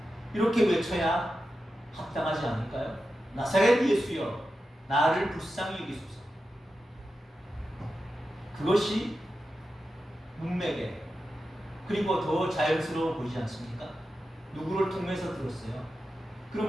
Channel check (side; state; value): both; normal; correlation 0.91